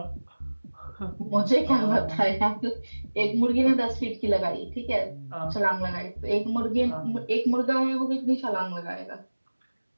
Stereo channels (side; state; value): both; inverted; correlation -1.00